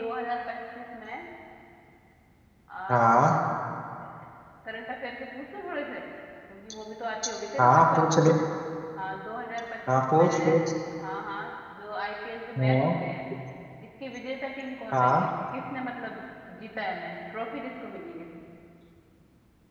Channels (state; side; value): identical; both; correlation 1.00